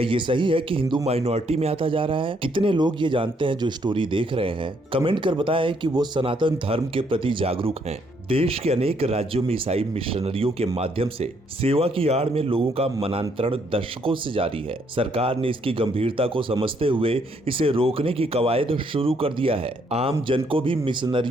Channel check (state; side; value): normal; both; correlation 0.71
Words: ये सही है कि हिंदू माइनॉरिटी में आता जा रहा है? कितने लोग ये जानते हैं जो स्टोरी देख रहे हैं? कमेंट कर बताएं कि वो सनातन धर्म के प्रति जागरूक हैं। देश के अनेक राज्यों में ईसाई मिशनरियों के माध्यम से सेवा की आड़ में लोगों का मनांतरण दशकों से जारी है। सरकार ने इसकी गंभीरता को समझते हुए इसे रोकने की कवायद शुरू कर दिया है। आम जन को भी